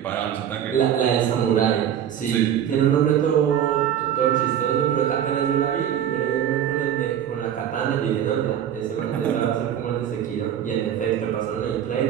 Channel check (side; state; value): left; quieter; 9.8 dB